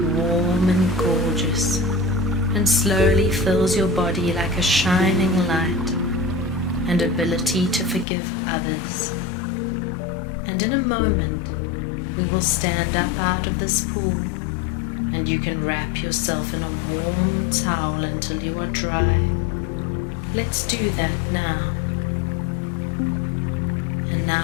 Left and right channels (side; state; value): right; drops out; at 8.1 s